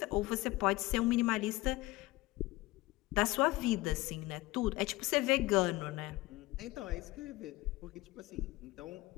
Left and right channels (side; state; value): right; quieter; 19.9 dB